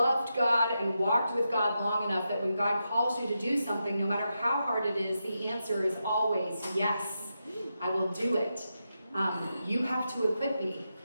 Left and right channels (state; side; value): inverted; both; correlation -0.87